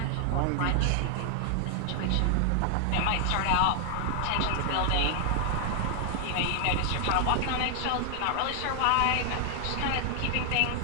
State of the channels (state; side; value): different; both; correlation 0.00